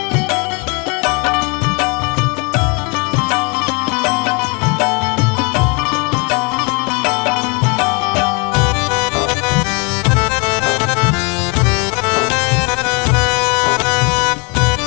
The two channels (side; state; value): right; quieter; 31.6 dB